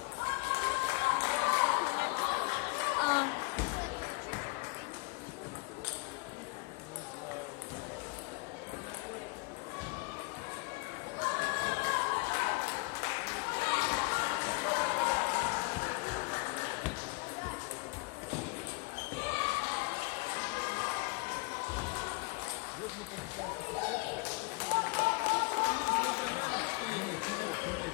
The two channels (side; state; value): right; quieter; 27.0 dB